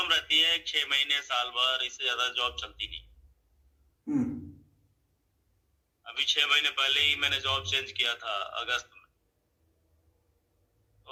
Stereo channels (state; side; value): identical; both; correlation 1.00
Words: रहती है, 6 महीने साल भर, इससे ज्यादा जॉब चलती नहीं। अभी 6 महीने पहले ही मैंने जॉब चेंज किया था, अगस्त में।